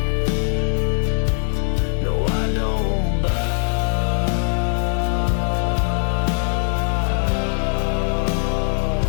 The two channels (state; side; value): silent; right; digital silence